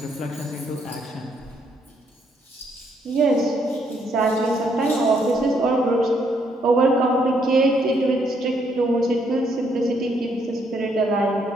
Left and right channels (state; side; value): normal; both; correlation 0.72